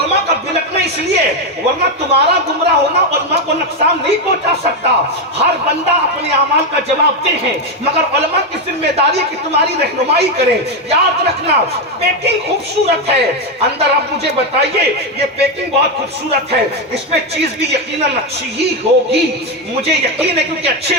کا بلکنا اس لیے ہے، ورنہ تمہارا گمراہ ہونا علماء کو نقصان نہیں پہنچا سکتا. ہر بندہ اپنے اعمال کا جواب دے ہے، مگر علماء کی ذمہ داری کہ تمہاری رہنمائی کریں. یاد رکھنا پیکنگ خوبصورت ہے، اندر اب مجھے بتائیے یہ پیکنگ بہت خوبصورت ہے، اس میں چیز بھی یقیناً اچھی ہی ہوگی. مجھے یقین ہے کیونکہ اچھے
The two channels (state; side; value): normal; both; correlation 0.08